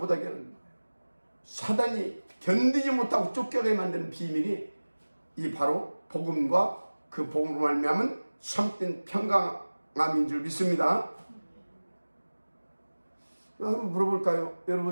하는 거예요. 사단이 견디지 못하고 쫓겨가게 만드는 비밀이 이 바로 복음과 그 복음으로 말미암은 참된 평강함인 줄 믿습니다. 한번 물어볼까요?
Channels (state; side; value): inverted; both; correlation -1.00